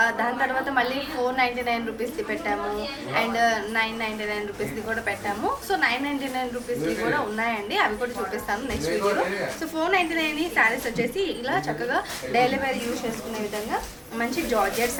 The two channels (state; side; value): identical; both; correlation 1.00